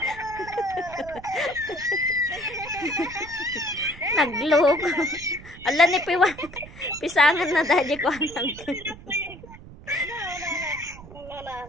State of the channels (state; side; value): noise; right; rumble, 17 dB below the sound